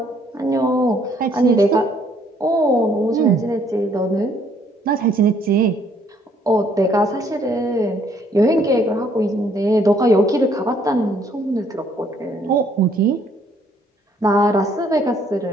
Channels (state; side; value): normal; both; correlation 0.65